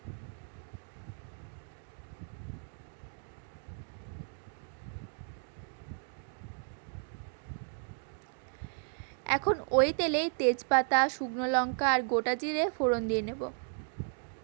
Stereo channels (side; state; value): left; silent; 55 dB below the other